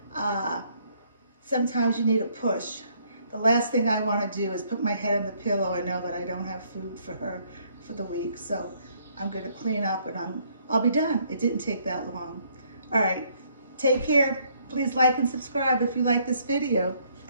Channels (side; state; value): both; inverted; correlation -0.67